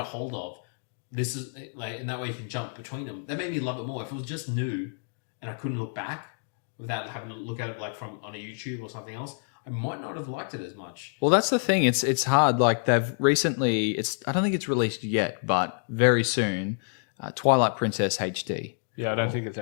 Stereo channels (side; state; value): right; silent; digital silence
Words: hold of. This is and that way you can jump between them. That made me love it more. If it was just new and I couldn't look back without having to look at it from on a YouTube or something else, I might not have liked it as much. Well, that's the thing. It's hard. They've recently. I don't think it's released yet, but very soon. Twilight Princess HD. Yeah, I don't think it's